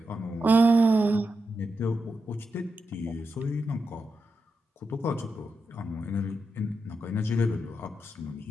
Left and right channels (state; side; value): normal; both; correlation 0.87